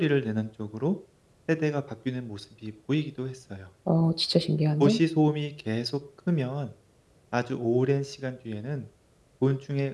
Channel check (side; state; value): both; identical; correlation 1.00